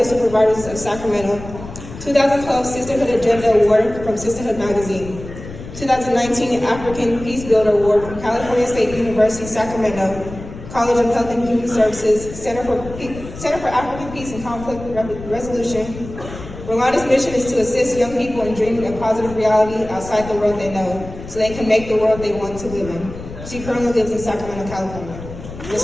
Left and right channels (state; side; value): noise; left; rumble, 12 dB below the sound